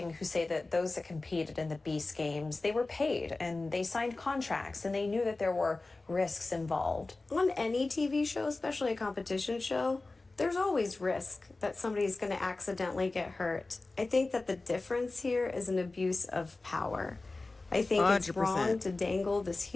who say that those that competed in the Beast Games, they were paid and they signed contracts and they knew that there were risks involved. On any TV show, especially a competition show, there's always risk that somebody's going to accidentally get hurt. I think that the difference here is an abuse of power. I think 100%. It's wrong to dangle this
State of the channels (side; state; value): right; quieter; 3.3 dB